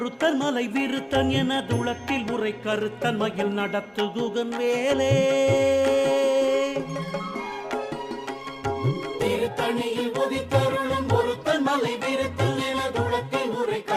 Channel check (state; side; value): identical; both; correlation 1.00